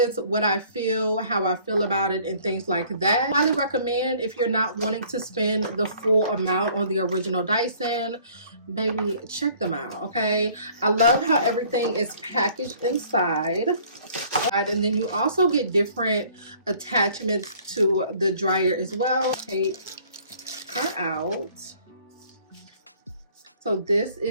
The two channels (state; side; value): inverted; both; correlation -0.56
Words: what I feel, how I feel about it, and things like that. Highly recommend if you're not wanting to spend the full amount on the original Dyson. Baby, check them out. Okay, I love how everything is packaged inside. And then you also get different attachments to the dryer as well. Take her out. So this